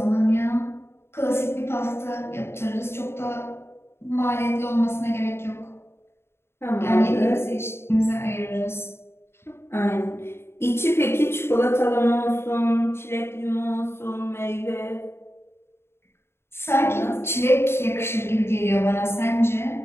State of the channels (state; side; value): late; right; 0.12 ms